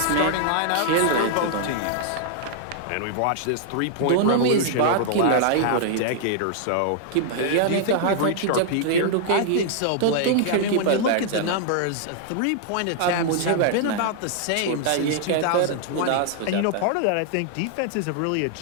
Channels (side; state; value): both; different; correlation -0.01